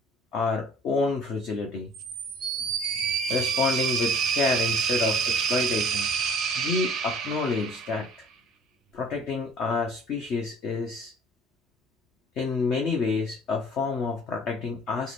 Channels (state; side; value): normal; both; correlation 0.51